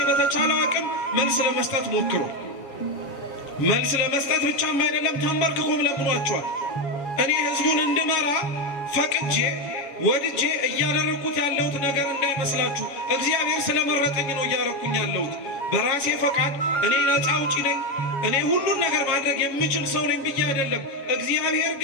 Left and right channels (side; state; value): right; late; 7.2 ms